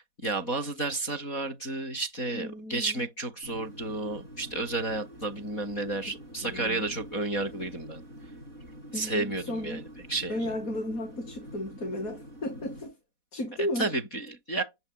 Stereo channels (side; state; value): right; late; 4.1 ms